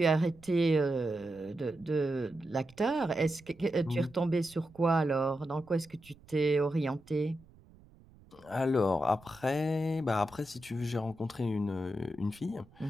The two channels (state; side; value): noise; right; rumble, 25 dB below the sound